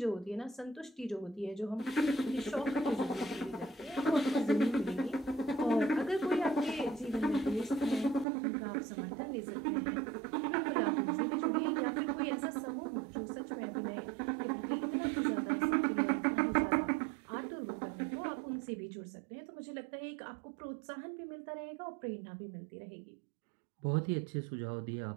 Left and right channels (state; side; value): drops out; left; at 8.2 s